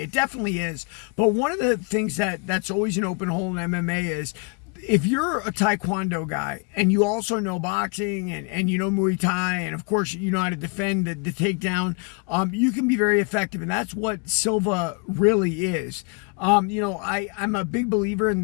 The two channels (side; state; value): right; quieter; 33.7 dB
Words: It definitely is. But one of the things that's always an open hole in MMA is, if you're a Taekwondo guy and you also know boxing and you know Muay Thai, and of course you know how to defend the takedown, you can be very effective. And that's what Silva really is. I'm a big believer in